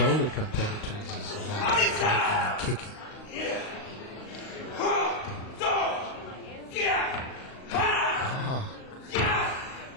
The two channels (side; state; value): right; late; 38 ms